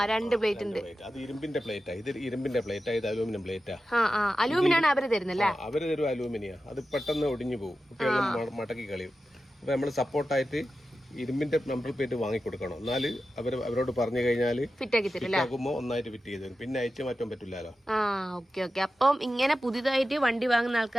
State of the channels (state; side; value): normal; both; correlation 0.92